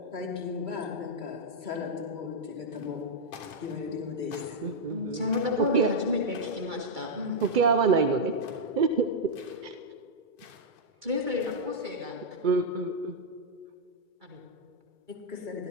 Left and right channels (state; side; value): late; left; 2.3 ms